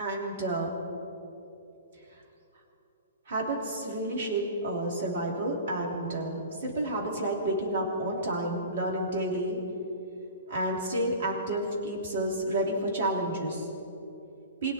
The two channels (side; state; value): both; inverted; correlation -0.35